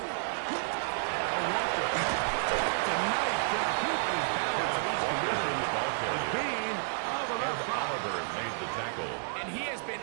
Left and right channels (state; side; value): silent; left; digital silence